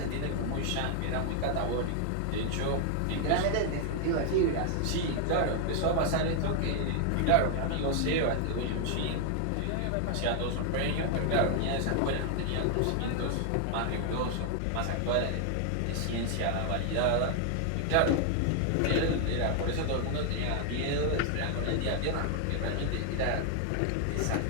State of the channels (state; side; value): different; both; correlation 0.00